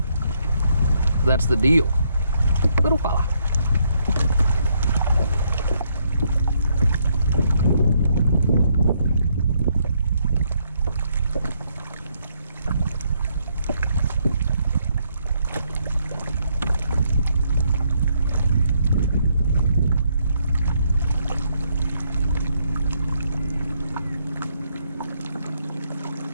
That's the deal. Little fella.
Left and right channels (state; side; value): inverted; both; correlation -0.73